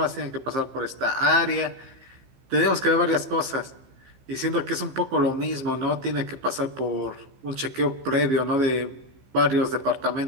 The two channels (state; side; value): late; left; 15 ms